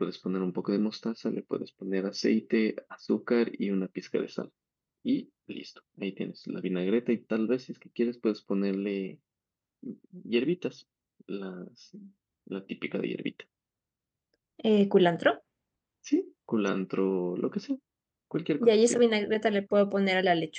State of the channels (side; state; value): both; identical; correlation 1.00